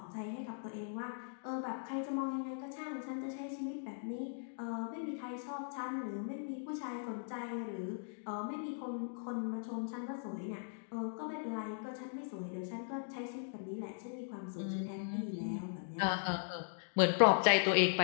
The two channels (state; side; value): silent; right; digital silence